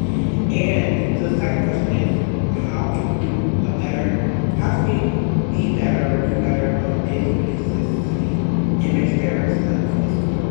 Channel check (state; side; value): silent; right; 66 dB below the other